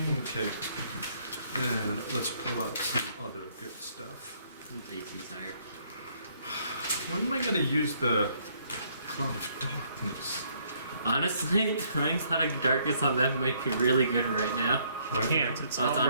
Okay. And let's pull out some other good stuff. AC's higher. When am I going to use the Cloud of Darkness? Honestly, throwing Cloud of Darkness on them might be really good right now. You can't. It's Oh, all it's on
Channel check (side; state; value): both; inverted; correlation -0.67